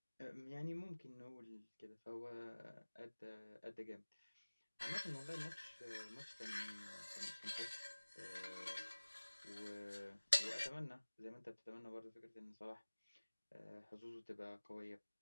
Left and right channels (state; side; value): inverted; both; correlation -1.00